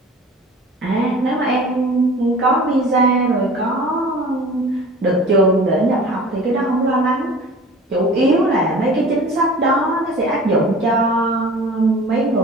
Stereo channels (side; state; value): both; normal; correlation 0.42